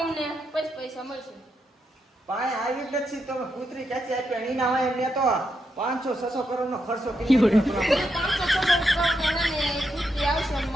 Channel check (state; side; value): normal; both; correlation 0.83